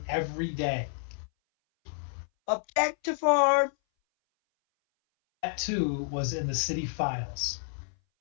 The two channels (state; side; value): silent; right; 58 dB below the other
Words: every day. Object to form. That too was in the city files.